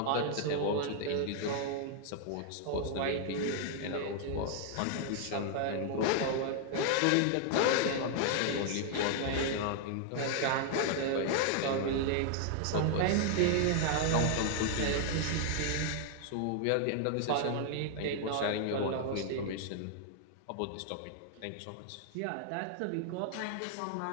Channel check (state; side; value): different; both; correlation 0.00